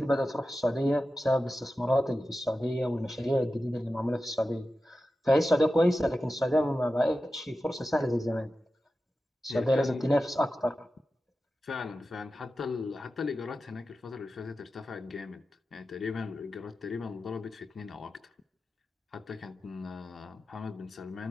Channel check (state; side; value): normal; both; correlation 0.93